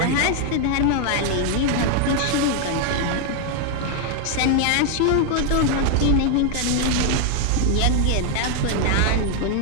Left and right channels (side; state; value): both; different; correlation 0.00